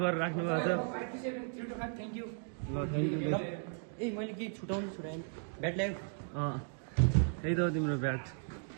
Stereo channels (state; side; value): silent; left; 54 dB below the other